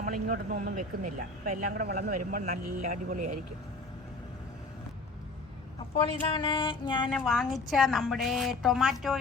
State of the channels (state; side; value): quieter; right; 3.2 dB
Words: ഇങ്ങോട്ടൊന്നും ഒന്നും വെക്കുന്നില്ല. അപ്പോൾ എല്ലാം കൂടെ വളർന്ന് വരുമ്പോൾ നല്ല അടിപൊളിയായിരിക്കും. അപ്പോൾ ഇതാണ് ഞാൻ വാങ്ങിച്ച നമ്മുടെ